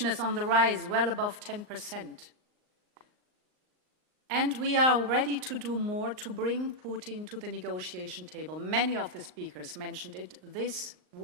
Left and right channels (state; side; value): late; left; 39 ms